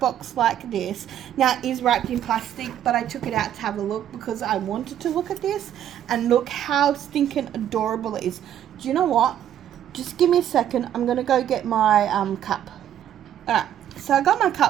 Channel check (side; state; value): left; quieter; 10.6 dB